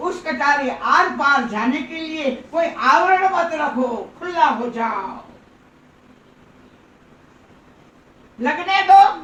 कटारी आर पार जाने के लिए कोई आवरण मत रखो, खुला हो जाओ, लगने दो।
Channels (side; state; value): both; identical; correlation 1.00